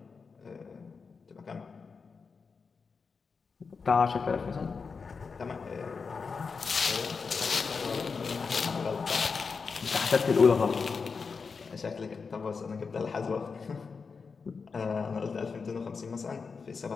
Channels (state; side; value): quieter; right; 5.1 dB